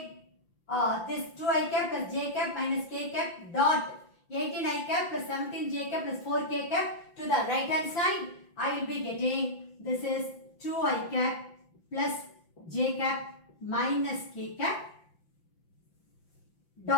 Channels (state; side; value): late; right; 5.8 ms